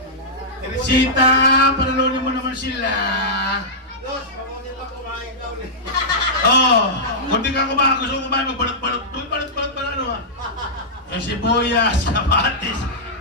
Teresita, panalunin mo naman sila. Los, mamunit lang kumain ka ulit. Oh, kung di ka kumain, gusto ko kumain, magbalot-balot. Balot-balot pa ano ha? Yung sibuyas, kamatis,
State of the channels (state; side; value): normal; both; correlation -0.12